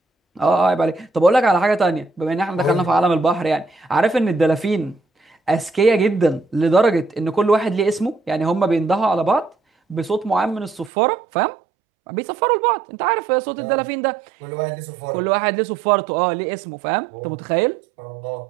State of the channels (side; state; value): left; drops out; at 10.9 s